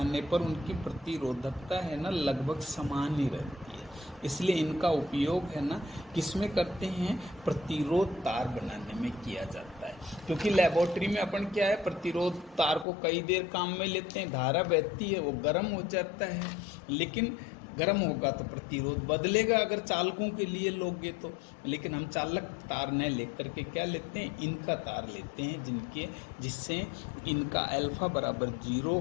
पर उनकी प्रतिरोधकता है ना लगभग समान ही रहती है। इसलिए इनका उपयोग है ना किसमें करते हैं, प्रतिरोध तार बनाने में किया जाता है। क्योंकि लेबोरेटरी में अपन क्या है, प्रतिरोध तार को कई देर काम में लेते हैं, धारा बहती है, वो गर्म हो जाता है, लेकिन गर्म होगा तो प्रतिरोध बदलेगा अगर चालकों के लिए लोगे तो। लेकिन हम चालक तार न लेकर के क्या लेते हैं, इनका तार लेते हैं, जिससे इनका अल्फा बराबर जीरो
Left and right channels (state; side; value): drops out; right; at 12.9 s